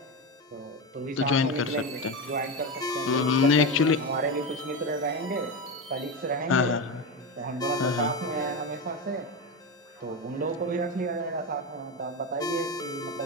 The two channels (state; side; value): normal; both; correlation 0.17